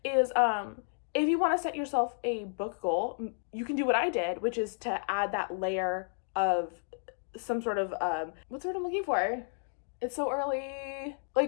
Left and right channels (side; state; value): right; silent; digital silence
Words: is if you want to set yourself a book goal, you can do what I did, which is to add that layer of some sort of what's the word I'm looking for? It's so early.